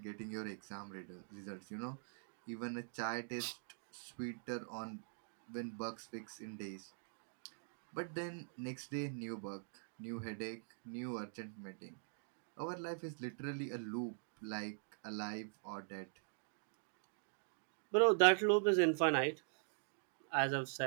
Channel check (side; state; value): left; silent; digital silence